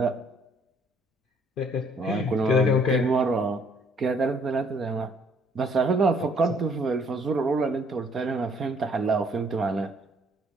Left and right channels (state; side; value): normal; both; correlation 0.63